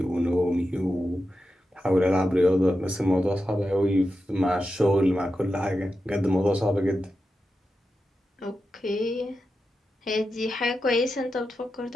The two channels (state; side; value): normal; both; correlation 0.90